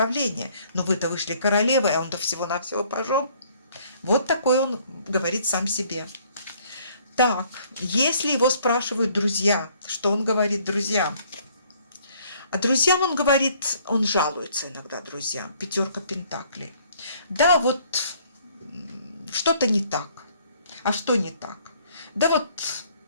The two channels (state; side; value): inverted; both; correlation -0.61